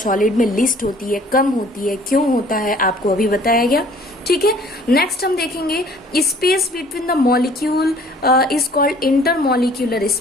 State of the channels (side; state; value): both; normal; correlation 0.54